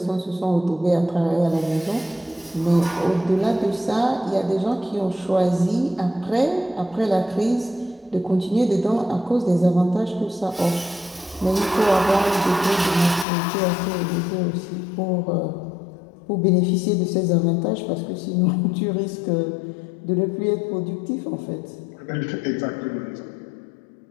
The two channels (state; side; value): drops out; right; at 13.2 s